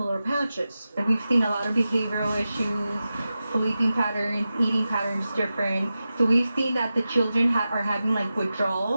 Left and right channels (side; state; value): both; inverted; correlation -0.93